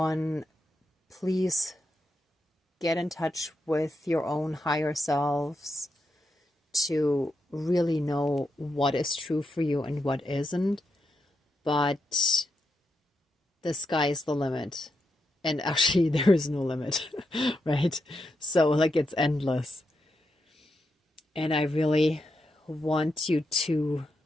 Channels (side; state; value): both; normal; correlation 0.84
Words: please get in touch with your own higher selves to really know what is true for you and what isn't. but the sky is the limit. And actually, there is no limit, right? So, like, it's endless. And I really want you to